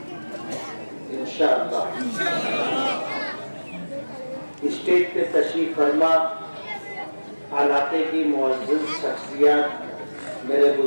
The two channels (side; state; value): both; inverted; correlation -1.00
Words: इंशाअल्लाह स्टेज पे तशरीफ फरमा इलाके की मुअज़्ज़ज़ शख्सियत, मेरे